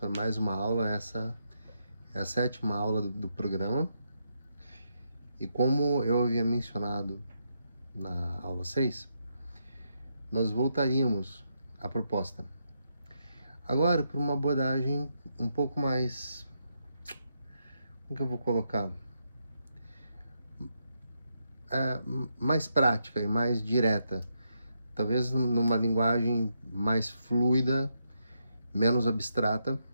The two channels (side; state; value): both; inverted; correlation -0.80